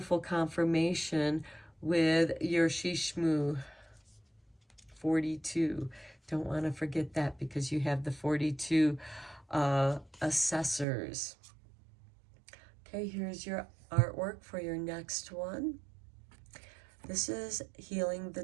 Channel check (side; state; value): left; drops out; at 10.9 s